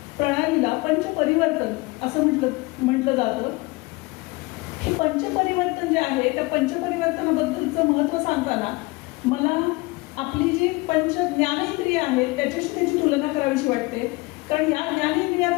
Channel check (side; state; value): right; quieter; 24.0 dB